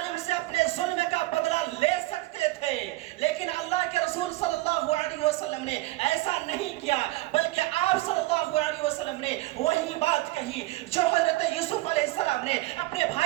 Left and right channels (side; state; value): left; quieter; 19.3 dB